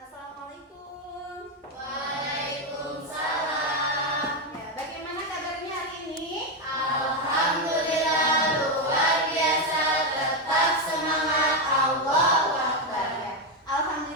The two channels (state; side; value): normal; both; correlation 0.07